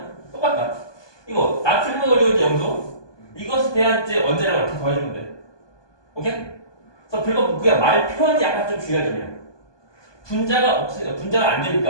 똑같다. 이거 나트륨 그리고 이제 염소 이것에 대한 이제 원자량을 다 더해주면 돼. 오케이? 그래서 별거 그게 말 표현이 약간 좀 주의할 점이야. 분자가 없으니까 분자가 안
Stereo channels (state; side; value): late; right; 1.2 ms